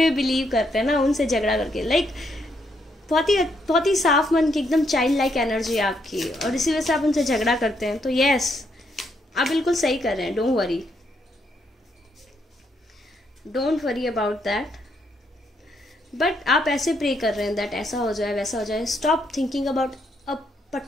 भी बिलीव करते हैं ना, उनसे झगड़ा करके. लाइक बहुत ही साफ मन की एकदम चाइल्ड लाइक एनर्जी है आपकी, और इसी वजह से आप उनसे झगड़ा करते हैं. तो यस, आप बिल्कुल सही कर रहे हैं. Don't worry about that. But आप ऐसे प्रे कर रहे हैं दैट ऐसा हो जाए, वैसा हो जाए. Stop thinking about a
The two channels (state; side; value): normal; both; correlation 0.76